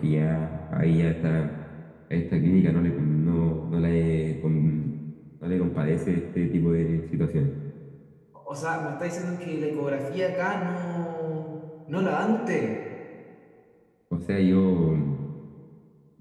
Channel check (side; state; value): both; identical; correlation 1.00